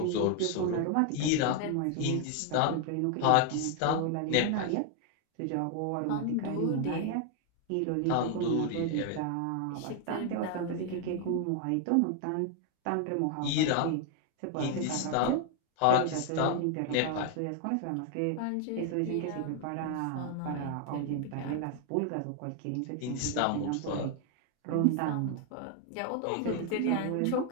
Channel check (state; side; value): different; both; correlation 0.00